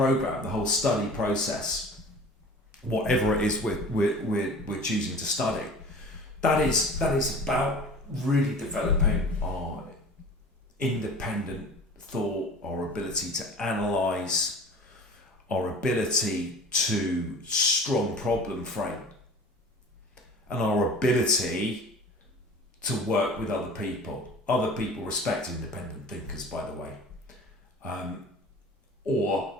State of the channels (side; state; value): both; normal; correlation 0.41